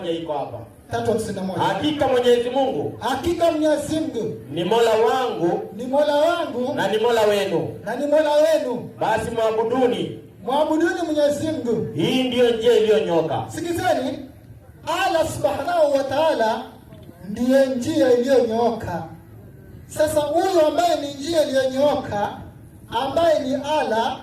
iko hapa. 3:51. Hakika Mwenyezi Mungu. Hakika Mwenyezi Mungu. Ni Mola wangu. Ni Mola wangu. Na ni Mola wenu. Na ni Mola wenu. Basi mwabuduni. Mwabuduni Mwenyezi Mungu. Hii ndiyo njia iliyonyoka. Sikizeni. Allah Subhanahu wa Ta'ala ndiye njia iliyonyooka. Sasa huyo ambaye ni njia iliyonyooka, ambaye ni Allah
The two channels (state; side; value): identical; both; correlation 1.00